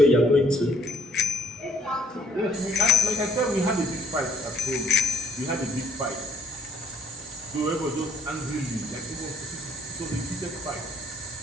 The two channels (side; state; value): both; normal; correlation 0.63